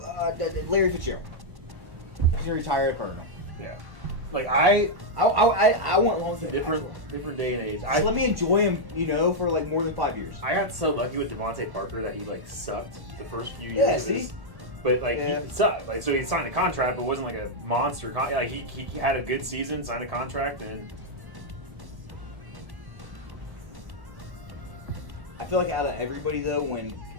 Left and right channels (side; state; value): left; late; 1.1 ms